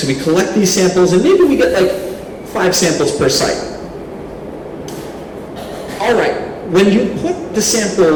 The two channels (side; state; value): both; identical; correlation 1.00